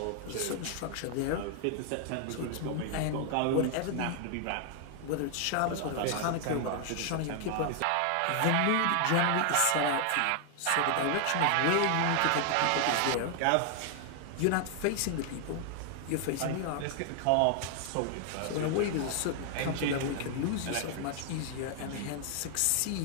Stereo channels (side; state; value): both; different; correlation 0.00